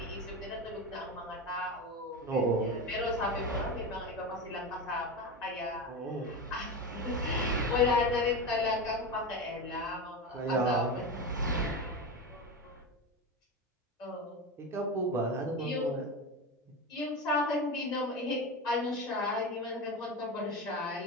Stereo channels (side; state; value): both; normal; correlation 0.21